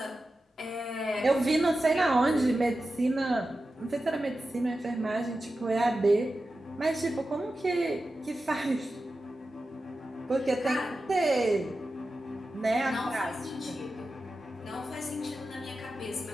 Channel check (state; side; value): normal; both; correlation 0.92